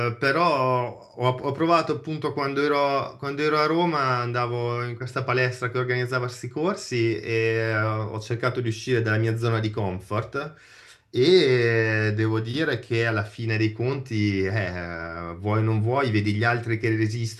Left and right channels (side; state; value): both; identical; correlation 1.00